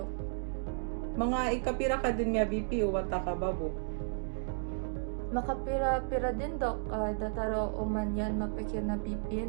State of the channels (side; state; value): left; silent; digital silence